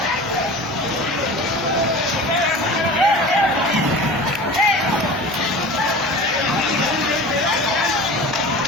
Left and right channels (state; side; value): normal; both; correlation 0.37